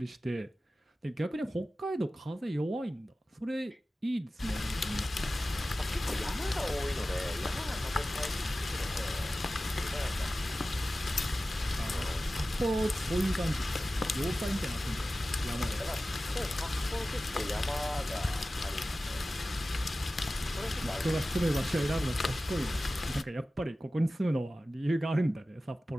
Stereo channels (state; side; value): normal; both; correlation 0.95